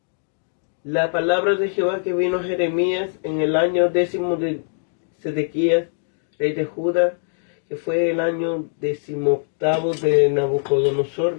La palabra de Jehová que vino a Jeremías en el año 10 de Sedequías, rey de Judá, que fue el año 18 de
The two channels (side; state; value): right; silent; 64 dB below the other